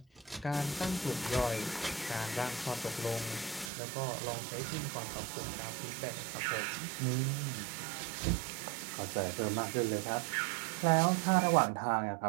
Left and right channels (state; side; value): drops out; left; at 3.7 s